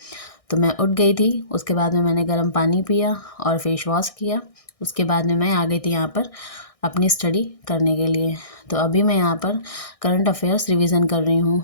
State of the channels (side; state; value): right; late; 1.6 ms